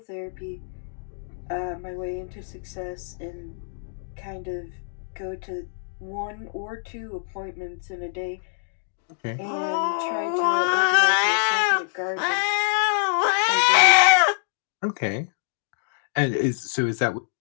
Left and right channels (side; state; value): right; silent; digital silence